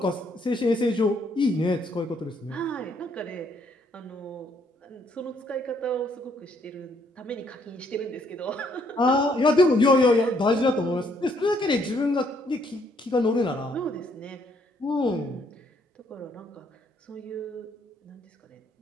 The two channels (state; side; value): normal; both; correlation 0.69